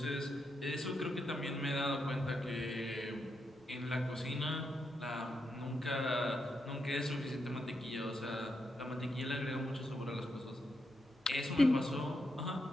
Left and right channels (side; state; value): both; normal; correlation 0.83